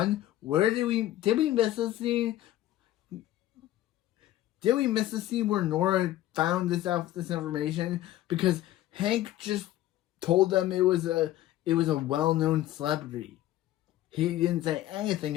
did we miss a scene? Did we miss the scene where Nora found this information? Because Hank just told them it was a well-known celebrity. He didn't say anything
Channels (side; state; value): right; quieter; 14.3 dB